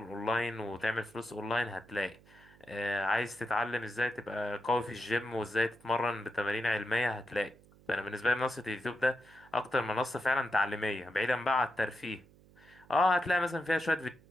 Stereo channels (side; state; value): right; noise; hum, 26 dB below the sound